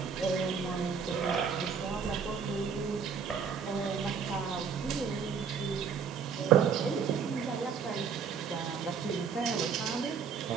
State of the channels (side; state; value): left; quieter; 6.4 dB